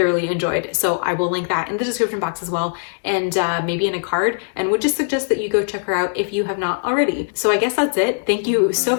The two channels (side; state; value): right; silent; digital silence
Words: enjoyed. So I will link that in the description box as well, and maybe in a card, and would just suggest that you go check her out if you have not already. So I guess that's it. Thank you so